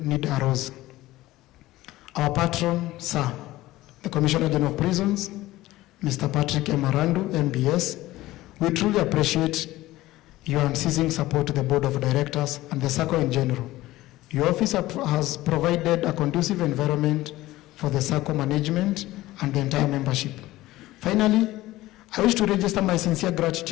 need arose. Our patron, sir, the Commissioner General of Prisons, Mr. Patrick Emarandu, MBS, we truly appreciate your unceasing support to the Board of Directors and the Sacco in general. Your office has provided a conducive environment for the Sacco management and the entire membership. Finally, I wish to register my sincere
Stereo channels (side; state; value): right; quieter; 17.1 dB